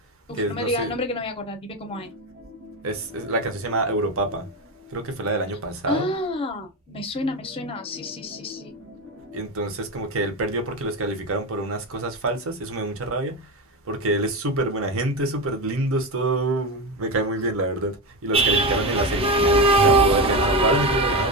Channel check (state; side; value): normal; both; correlation 0.17